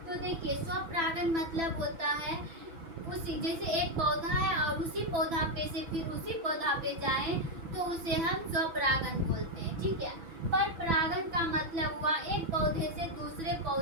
तो देखिए, स्वपरागन मतलब होता है उसी, जैसे एक पौधा है और उसी पौधा पे से फिर उसी पौधा पे जाएं तो उसे हम स्वपरागन बोलते हैं, ठीक है। परपरागन का मतलब हुआ एक पौधे से दूसरे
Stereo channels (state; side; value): late; left; 6.0 ms